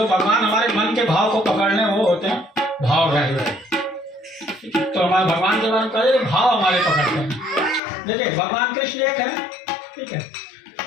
भगवान हमारे मन के भाव को पकड़ने वो होते हैं भावग्राही। तो हमारे भगवान के बारे में कहे भाव हमारे पकड़ते हैं। देखिए भगवान कृष्ण एक है, ठीक है।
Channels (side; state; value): right; drops out; at 7.8 s